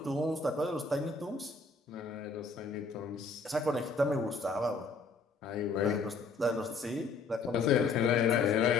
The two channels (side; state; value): right; quieter; 4.2 dB